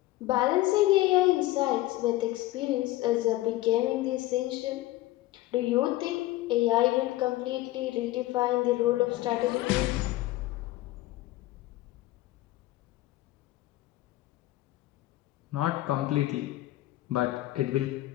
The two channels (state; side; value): quieter; right; 16.9 dB